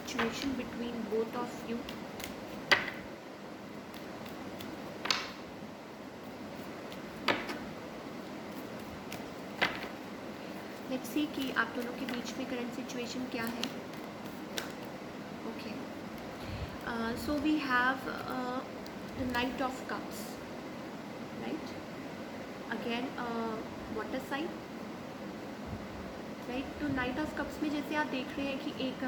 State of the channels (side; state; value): both; identical; correlation 1.00